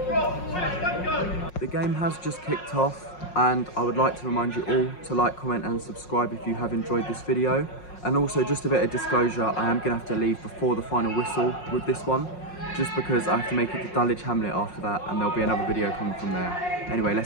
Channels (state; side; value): late; right; 5.5 ms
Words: game has just kicked off, and I would like to remind you all to like, comment and subscribe if you have enjoyed this video. And also, just a bit of disclosure, I am going to have to leave before the final whistle with this one, just because I have to make it to Dulwich Hamlet after that, and there'll be another video coming from there. Anyway,